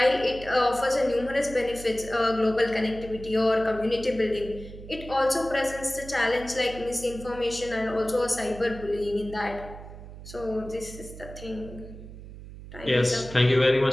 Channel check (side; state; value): right; noise; hum, 14 dB below the sound